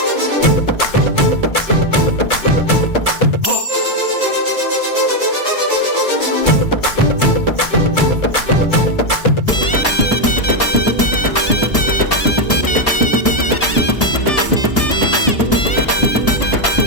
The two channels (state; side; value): late; right; 1.7 ms